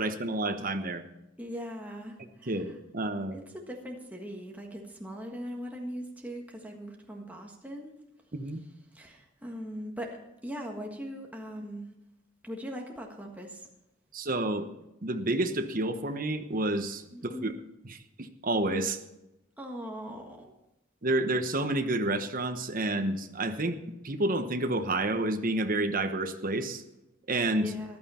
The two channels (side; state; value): both; normal; correlation 0.39